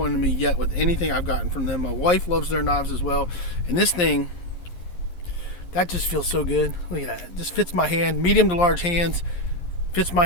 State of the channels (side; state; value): right; late; 11 ms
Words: me yet with anything I've gotten from them. My wife loves their knives as well. And this thing, that just feels so good. Look at that. It just fits my hand. Medium to large hands. Fits my